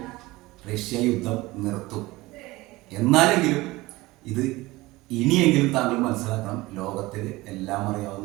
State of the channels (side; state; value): left; quieter; 20.0 dB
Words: റഷ്യ യുദ്ധം നിർത്തും. എന്നാലെങ്കിലും ഇത് ഇനിയെങ്കിലും താങ്കൾ മനസ്സിലാക്കണം, ലോകത്തിൽ എല്ലാം